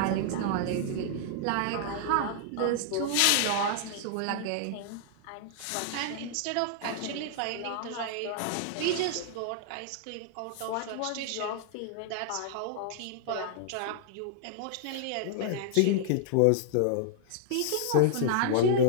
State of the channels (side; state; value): both; different; correlation -0.01